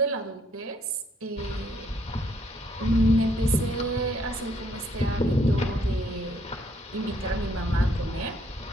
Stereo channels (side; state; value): both; normal; correlation 0.69